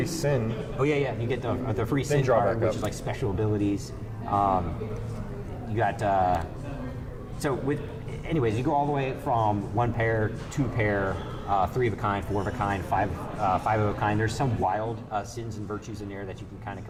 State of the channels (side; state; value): both; identical; correlation 1.00